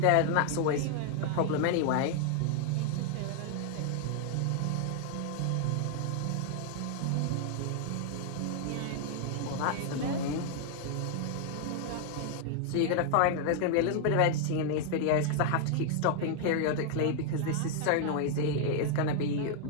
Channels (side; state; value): both; different; correlation 0.00